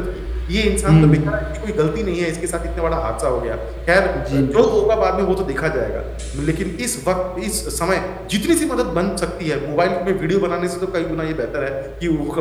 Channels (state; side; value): identical; both; correlation 1.00